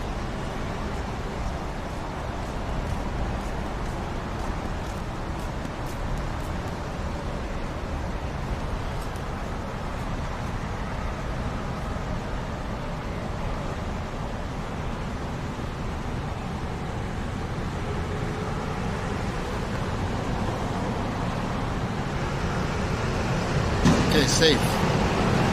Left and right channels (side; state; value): both; identical; correlation 1.00